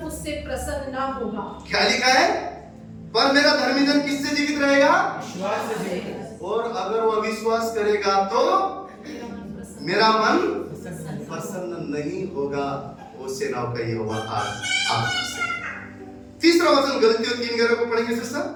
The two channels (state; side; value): identical; both; correlation 1.00